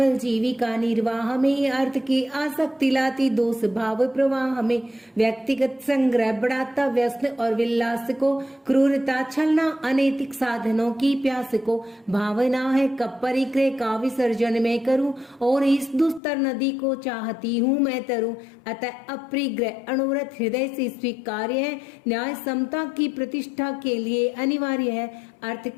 जीविका निर्वाह में, अर्थ की आसक्ति लाती दोष भाव प्रवाह में। व्यक्तिगत संग्रह बढ़ाता व्यसन और विलास को, क्रूरता छलना अनैतिक साधनों की प्यास को। भावना है कब परिग्रह का विसर्जन मैं करूं, और इस दुस्तर नदी को चाहती हूं मैं तरूं। अतः अपरिग्रह अणुव्रत हृदय से स्वीकार्य है, न्याय समता की प्रतिष्ठा के लिए अनिवार्य है। अर्थ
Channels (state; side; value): drops out; right; at 16.2 s